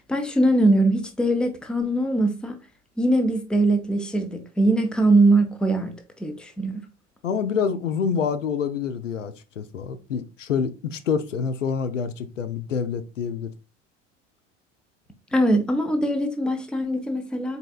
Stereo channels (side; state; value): both; normal; correlation 0.71